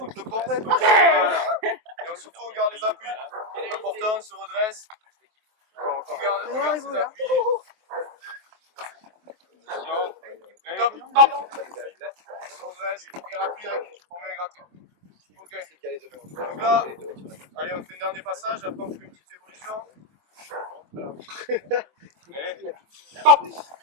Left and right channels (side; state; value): left; late; 23 ms